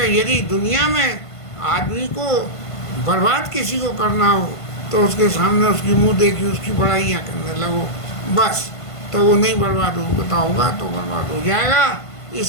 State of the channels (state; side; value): late; right; 1.5 ms